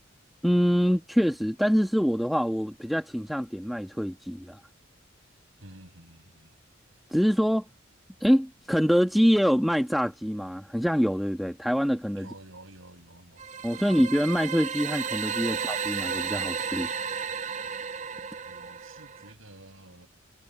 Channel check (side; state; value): both; normal; correlation 0.92